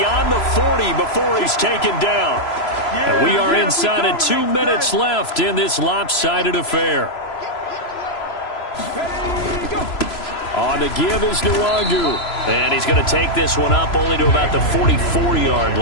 the 40 before he's taken down. And we are inside of 2 minutes left in this lopsided affair. On the give is Nwangu. And he's going to take this one up only to about the 44-yard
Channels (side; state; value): right; late; 3.0 ms